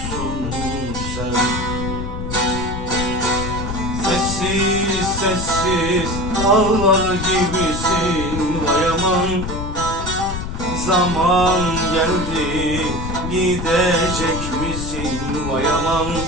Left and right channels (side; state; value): left; noise; rumble, 6 dB below the sound